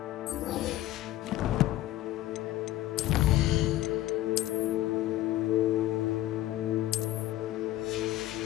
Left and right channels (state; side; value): quieter; right; 14.7 dB